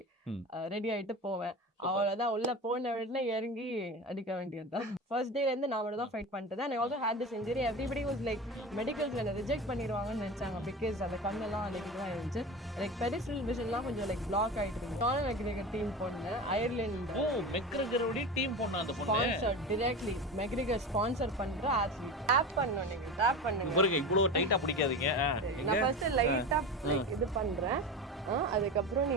ரெடி ஆயிட்டு போவேன். அவ்வளவுதான், உள்ள போன உடனே இறங்கி அடிக்க வேண்டியதுதான். ஃபர்ஸ்ட் டேல இருந்து நான் மட்டும் தான் ஃபைட் பண்ணிட்டு. And I also had this injury. Everybody was like மெடிக்கல்ஸ்ல என்ன ரிஜெக்ட் பண்ணிடுவாங்கன்னு நினைச்சாங்க. பிகாஸ் அந்த கண்ணெல்லாம் லைக் இதுவாக இருந்துச்சு. லைக் பெரிஃபரல் விஷன்லாம் கொஞ்சம் லைக் பிளாக் ஆயிட்டு இருந்துச்சு. கானர் மெக்ரிகர் டீம் போனேன், அயர்லாந்து. மெக்ரிகரோட டீம் போன அந்த பொண்ணு ஸ்பான்சர் டைரக்ட்லி மெக்ரிகர் ஸ்பான்சர் பண்ற ஆத்லீட். டேப் பண்ணனும், நீங்க டேப் பண்ணுங்க. பாருங்க, இவ்வளவு டைட்டா பிடிக்காதீங்க. நான் ஃபர்ஸ்ட் லைட்டா லைக் இது பண்றேன், அதுக்கப்புறம்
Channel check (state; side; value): normal; both; correlation 0.28